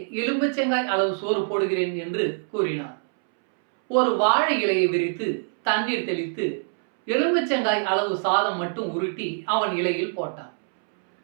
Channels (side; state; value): left; silent; 62 dB below the other